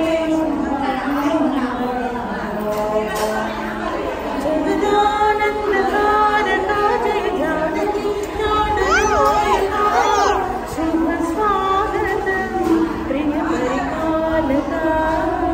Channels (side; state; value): both; identical; correlation 1.00